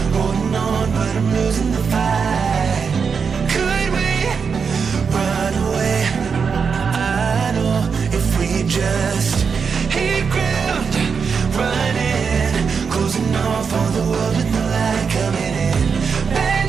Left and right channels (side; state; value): left; quieter; 5.9 dB